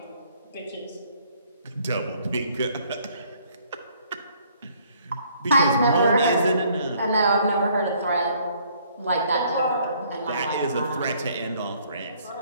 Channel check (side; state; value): both; inverted; correlation -0.63